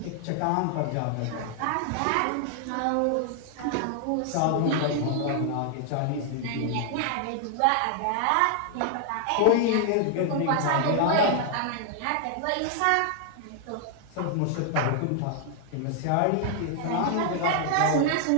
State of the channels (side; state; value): both; different; correlation 0.00